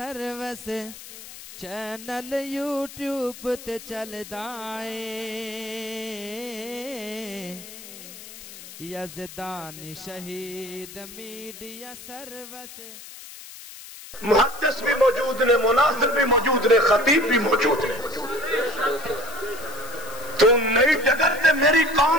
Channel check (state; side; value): noise; left; hiss, 15 dB below the sound